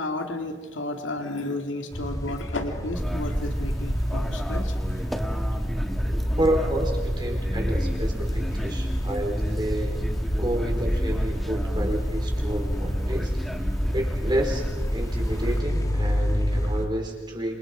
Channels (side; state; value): both; normal; correlation 0.86